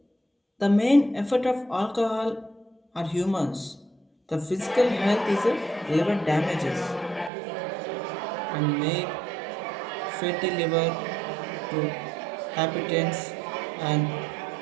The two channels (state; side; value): drops out; left; at 7.3 s